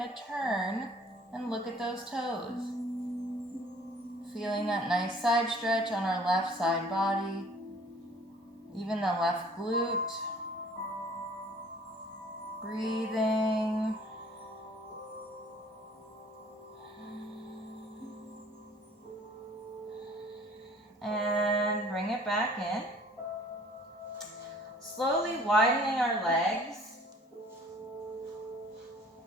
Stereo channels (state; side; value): normal; both; correlation 0.53